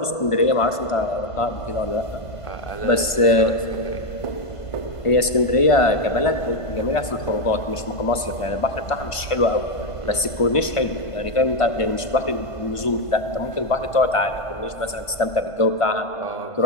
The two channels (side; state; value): right; late; 1.5 ms